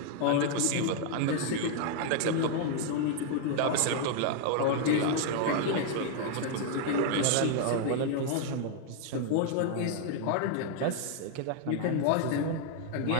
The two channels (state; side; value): different; both; correlation 0.00